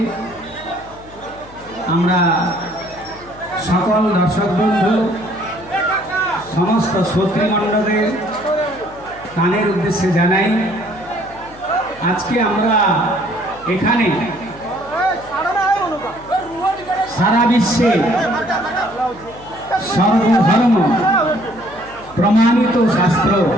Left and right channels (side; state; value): left; noise; hum, 21 dB below the sound